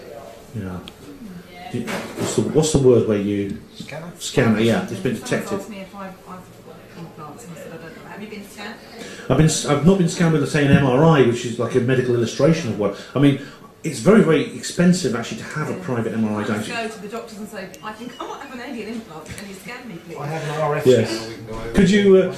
you know, what's the word where you scanner? Yeah, it's been detected. Asked me if I've implants, and I said I don't know. Have you been scanned? I've not been scanned with, say, an MRI, which is like a medical illustration of what. I mean, it's very, very expensive actually to have a private MRI. Don't you go to the doctors and say, I think I might have an alien implant. Can you scan me, please? I have an RF yes. scanner. We can go over.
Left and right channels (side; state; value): both; identical; correlation 1.00